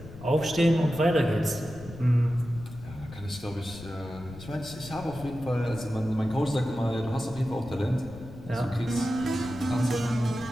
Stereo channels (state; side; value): noise; left; rumble, 15 dB below the sound